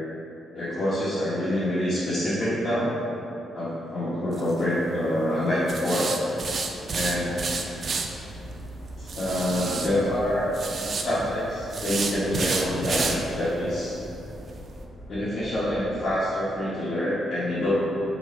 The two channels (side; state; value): both; normal; correlation 0.79